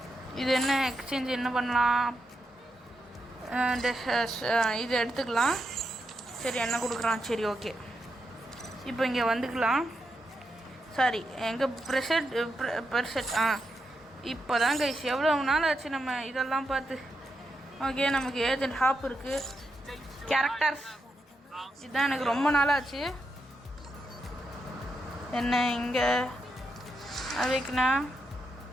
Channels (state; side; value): normal; both; correlation 0.84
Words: இது என்ன எக்ஸ்சேஞ்ச் என்ன பண்ணலாம், இது எடுத்துக்கலாம். சரி, என்ன கொடுக்குறான்? சரி, ஓகே. இப்போ இங்கே வந்துக்கலாம். சாரி, எங்கள் ப்ரெசெட் இப்போ தான் கைஸ், எவ்வளோ நாள் ஆச்சு நம்ம இதெல்லாம் பார்த்து. ஓகே, நமக்கு ஏஜென்ட் ஹாப் இருக்குது, கேரக்டர்ஸ், இதுதான் எனக்கு ரொம்ப நாளாச்சு. என்ன இங்கே அவைக்கணா?